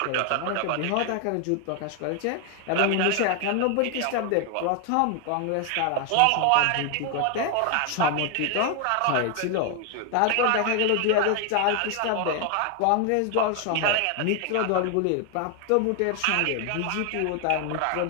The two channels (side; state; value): both; different; correlation 0.01